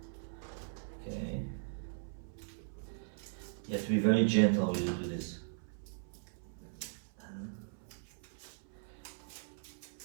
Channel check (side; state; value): left; silent; 52 dB below the other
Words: Okay, you have to be very gentle when you do this.